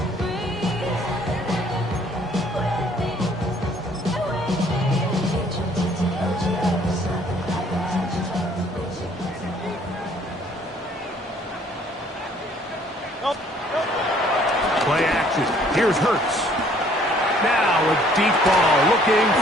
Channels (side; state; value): both; normal; correlation 0.60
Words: Play action. Here's Hurts. Now a deep ball looking